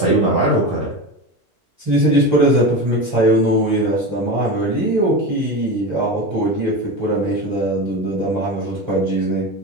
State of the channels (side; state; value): both; normal; correlation 0.23